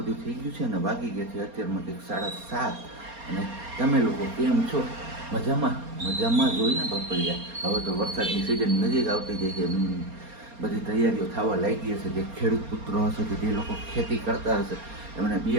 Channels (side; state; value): left; late; 4.3 ms